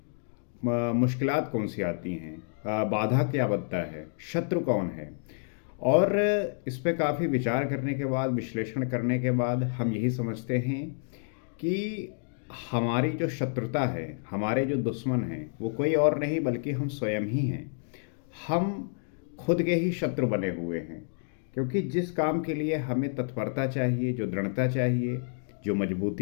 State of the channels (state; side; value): silent; right; digital silence